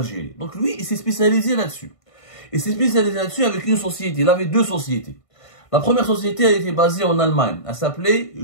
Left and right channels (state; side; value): late; right; 1.5 ms